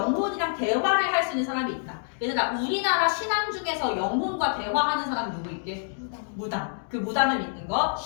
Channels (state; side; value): silent; right; digital silence